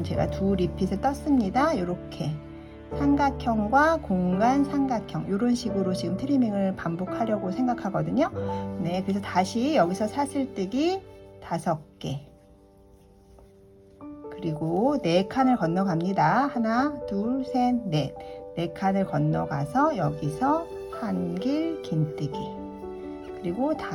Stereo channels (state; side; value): identical; both; correlation 1.00